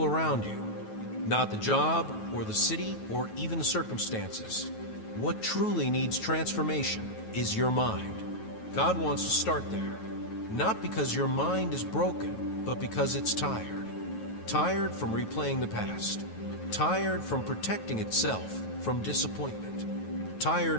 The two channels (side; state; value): right; late; 9.3 ms